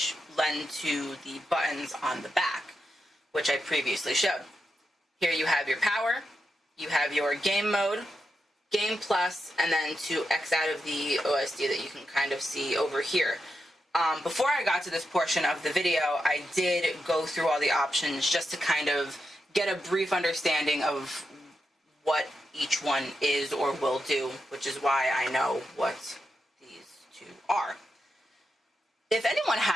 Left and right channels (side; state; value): both; normal; correlation 0.86